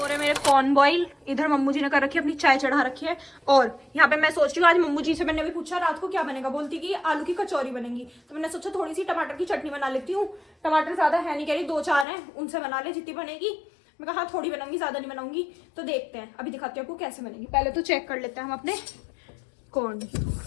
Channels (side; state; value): right; drops out; at 12.1 s